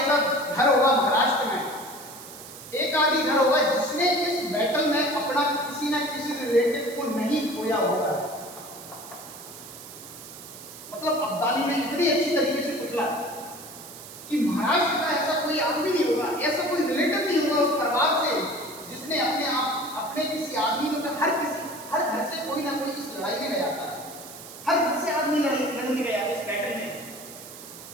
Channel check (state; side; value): noise; right; hiss, 15 dB below the sound